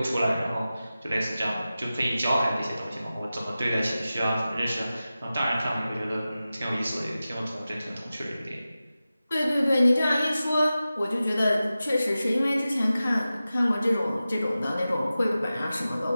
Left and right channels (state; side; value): inverted; both; correlation -0.94